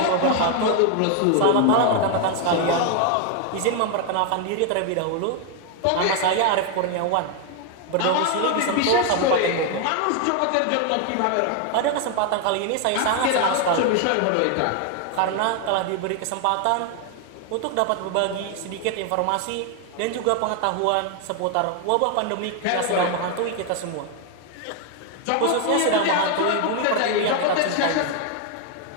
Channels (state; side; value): different; both; correlation 0.00